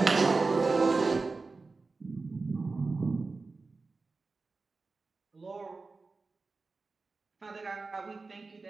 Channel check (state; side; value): quieter; left; 3.9 dB